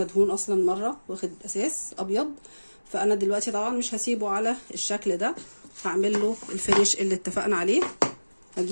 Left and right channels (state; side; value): inverted; both; correlation -1.00